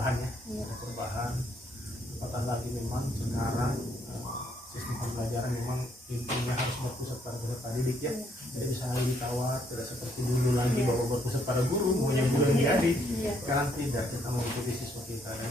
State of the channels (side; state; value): both; normal; correlation 0.71